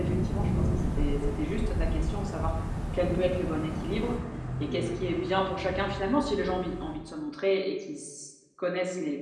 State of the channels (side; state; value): both; identical; correlation 1.00